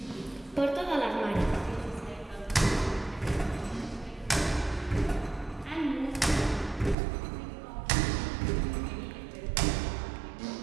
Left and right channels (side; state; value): left; drops out; at 7.0 s